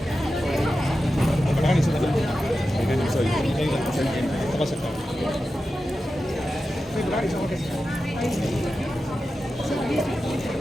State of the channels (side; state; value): both; normal; correlation 0.92